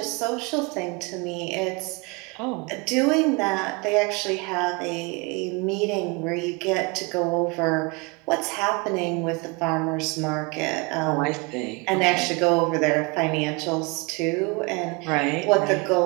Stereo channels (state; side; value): quieter; left; 28.4 dB